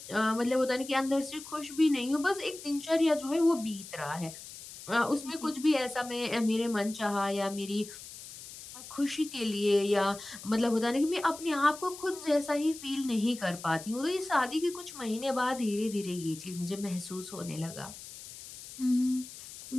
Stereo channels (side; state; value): left; noise; hiss, 14 dB below the sound